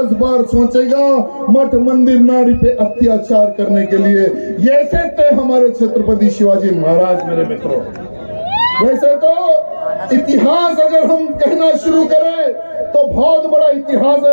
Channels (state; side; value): inverted; both; correlation -1.00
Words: बार सोचेगा मठ मंदिर नारी पे अत्याचार करने के लिए। ऐसे थे हमारे छत्रपति शिवाजी महाराज। मेरे मित्रों, वैसे तो इतिहास अगर हम कहना शुरू करें तो बहुत बड़ा इतिहास है।